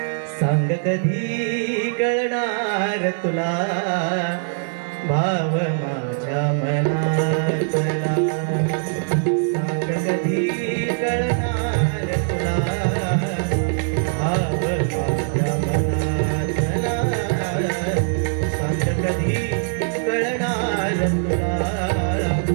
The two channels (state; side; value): silent; left; digital silence